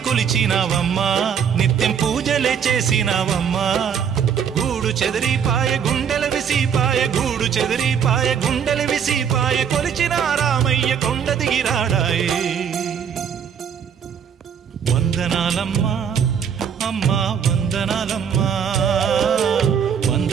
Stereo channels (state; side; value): quieter; left; 7.7 dB